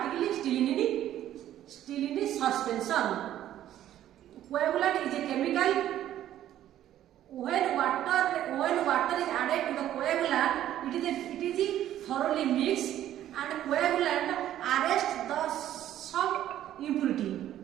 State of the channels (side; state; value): left; quieter; 12.1 dB